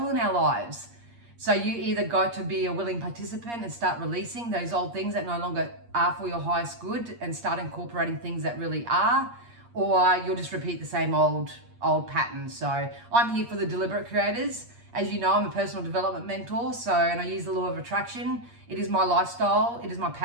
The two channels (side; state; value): left; late; 8.5 ms